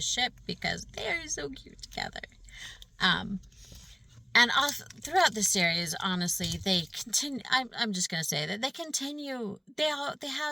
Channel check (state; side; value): identical; both; correlation 1.00